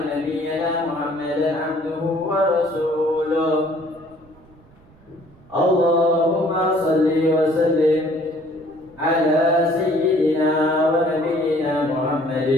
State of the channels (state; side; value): noise; right; rumble, 27 dB below the sound